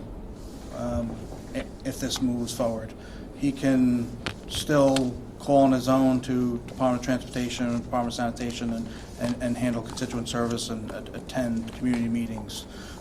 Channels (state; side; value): identical; both; correlation 1.00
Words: if this moves forward. he can still call on his own to Department of Transportation, Department of Sanitation, and handle constituent service and attend community meetings.